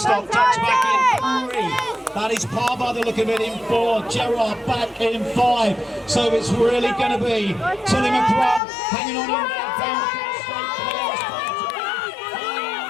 tucks back in 3. That is par by the look of it in 4. Gerard back in 5. So it's really going to be Tilly McCrum hanging on in there down the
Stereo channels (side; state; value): right; drops out; at 8.6 s